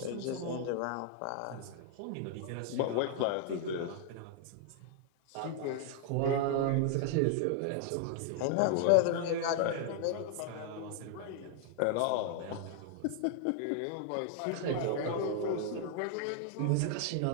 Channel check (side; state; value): both; different; correlation 0.00